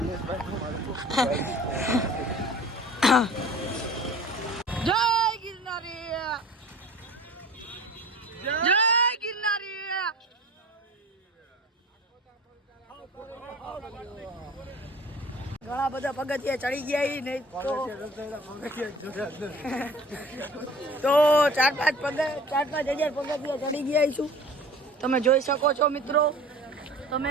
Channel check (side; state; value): both; normal; correlation 0.43